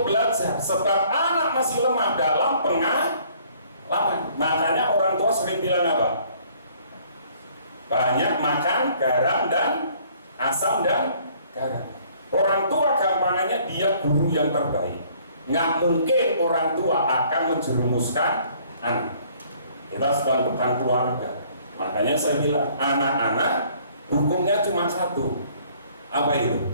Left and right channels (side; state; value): both; inverted; correlation -0.59